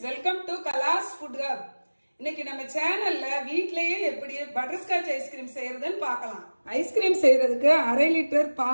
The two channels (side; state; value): both; inverted; correlation -1.00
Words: welcome to Kala's Food Hub. இன்னைக்கு நம்ம சேனல்ல வீட்லயே எப்படி பட்டர்ஸ்காட்ச் ஐஸ்கிரீம் செய்யறதுன்னு பார்க்கலாம். ஐஸ்கிரீம் செய்யறதுக்கு 1/2 லிட்டர்